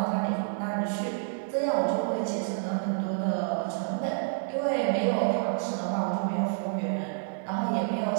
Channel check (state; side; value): silent; left; digital silence